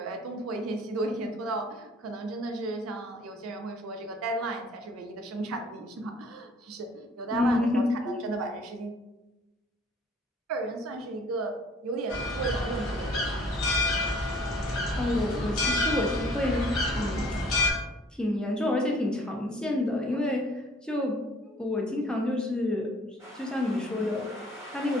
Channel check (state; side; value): normal; both; correlation 0.55